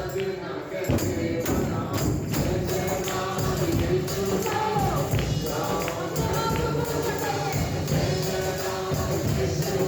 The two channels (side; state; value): both; identical; correlation 1.00